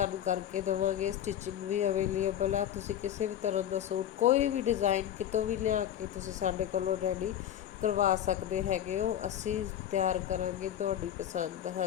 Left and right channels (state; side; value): quieter; right; 10.8 dB